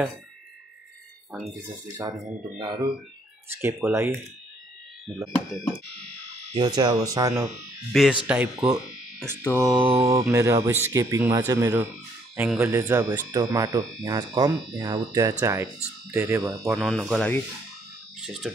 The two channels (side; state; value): both; normal; correlation 0.67